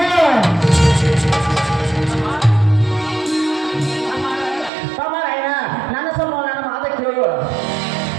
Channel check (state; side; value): drops out; left; at 4.7 s